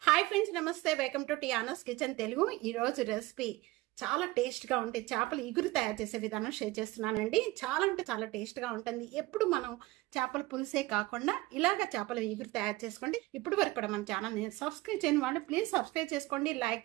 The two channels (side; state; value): left; quieter; 19.7 dB